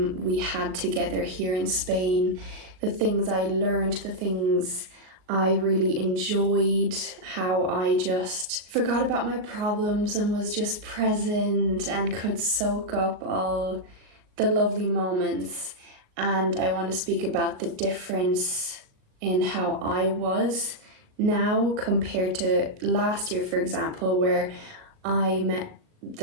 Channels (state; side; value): late; left; 38 ms